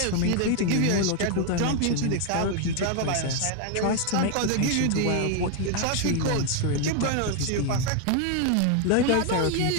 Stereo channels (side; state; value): both; different; correlation 0.00